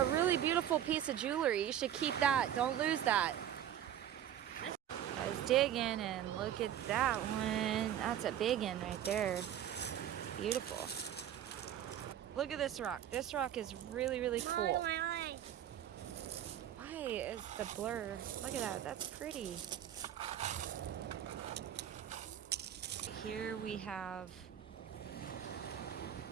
really beautiful piece of jewelry. You should keep that. Don't lose that. I was digging and look at that one. That's a big one right there. Beautiful. Look at this rock. This rock is really, really cool. Why is the blur? Look at that. That's pretty. Here we have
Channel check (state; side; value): quieter; left; 10.8 dB